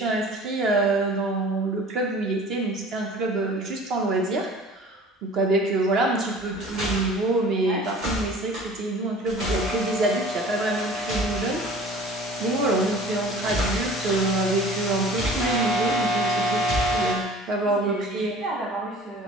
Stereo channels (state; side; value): normal; both; correlation 0.45